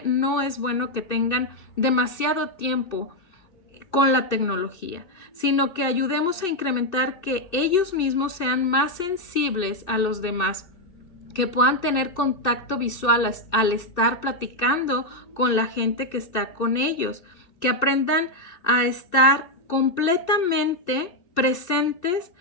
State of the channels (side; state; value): right; late; 2.6 ms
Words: no es bueno que tengan demasiado tiempo con la tecnología, sino que ayudemos a incrementar que ellos mismos sean más sensibles a los demás, que puedan tener contacto visual al estar platicando con la gente que está con ellos, que aprendan a estar completamente presentes